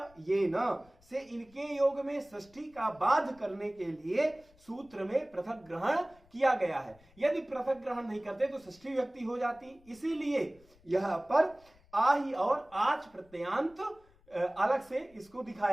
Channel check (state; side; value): noise; left; rumble, 29 dB below the sound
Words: से इनके योग में षष्ठी का बाध करने के लिए सूत्र में पृथक ग्रहण किया गया है। यदि पृथक ग्रहण नहीं करते तो षष्ठी विभक्ति हो जाती, इसीलिए यहां पर आहि और आच प्रत्ययांत अलग से इसको